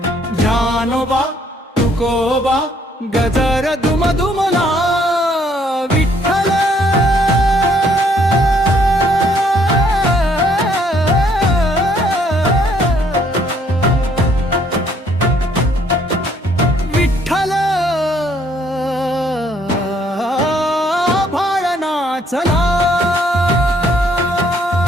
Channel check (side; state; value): both; normal; correlation 0.65